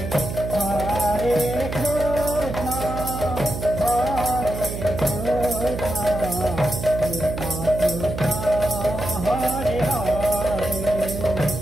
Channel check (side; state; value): right; noise; hum, 6 dB below the sound